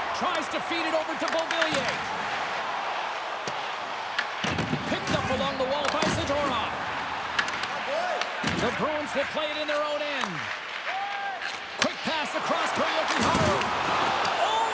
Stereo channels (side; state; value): both; identical; correlation 1.00